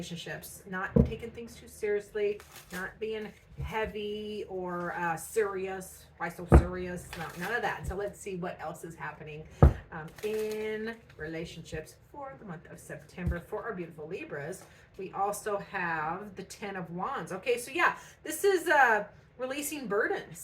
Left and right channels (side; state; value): both; identical; correlation 1.00